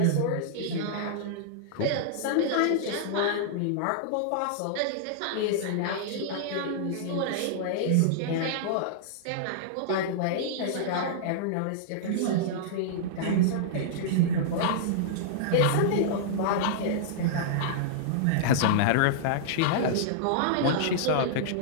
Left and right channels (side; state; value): both; different; correlation -0.02